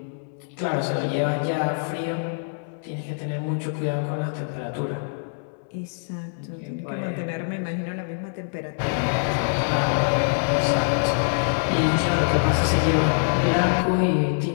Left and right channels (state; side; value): silent; right; digital silence